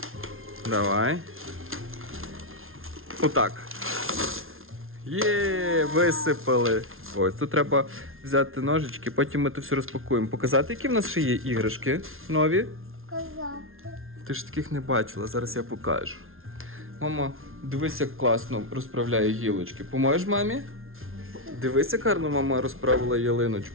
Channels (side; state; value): left; late; 0.61 ms